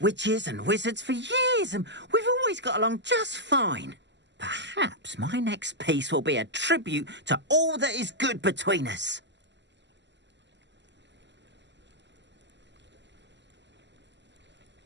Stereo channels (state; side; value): late; left; 0.52 ms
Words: and wizards for years, and we've always got along just fine. Perhaps my next piece will be a tribute to all that is good between us.